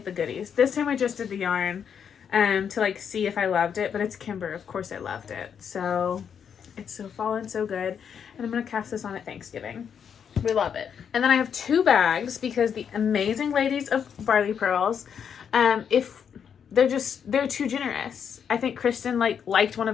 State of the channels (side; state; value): right; quieter; 7.6 dB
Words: the goodies. This time I just did the yarn to see if I loved it. But it's Kimber. Of course I loved it. So It's so fall and so good. And I'm going to cast this on at Thanksgiving. We love it. And then I have 2 bags because the amazing ladies of Barley Pearls, if they're too generous. I think Christen liked one of